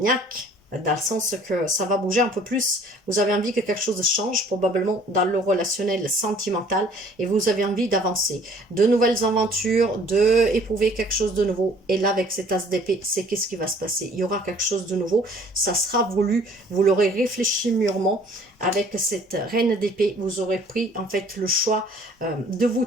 dans le sens que ça va bouger un peu plus. Vous avez envie que quelque chose change, probablement dans le relationnel sentimental, et vous avez envie d'avancer. De nouvelles aventures, d'éprouver quelque chose de nouveau. Et là, avec cet as d'épée, c'est qu'est-ce qui va se passer? Il y aura quelque chose de nouveau, ça sera voulu, vous l'aurez réfléchi mûrement. Avec cette reine d'épée, vous aurez pris en fait le choix de vous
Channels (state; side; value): normal; both; correlation 0.55